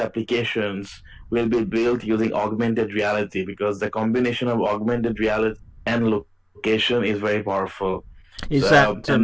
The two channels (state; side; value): identical; both; correlation 1.00